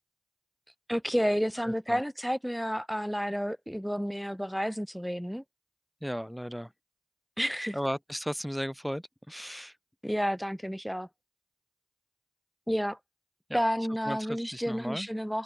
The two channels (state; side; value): identical; both; correlation 1.00